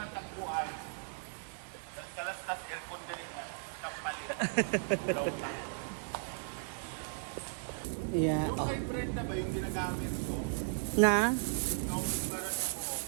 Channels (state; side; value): silent; left; 54 dB below the other